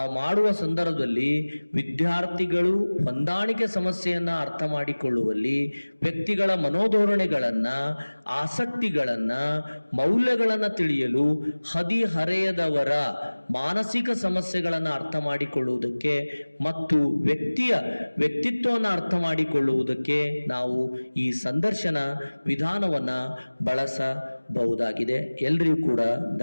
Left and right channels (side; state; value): both; inverted; correlation -1.00